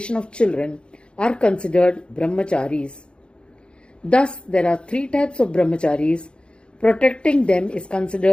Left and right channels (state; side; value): late; right; 0.055 ms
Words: of children, are considered brahmacharis. Thus, there are three types of brahmacharis. Protecting them is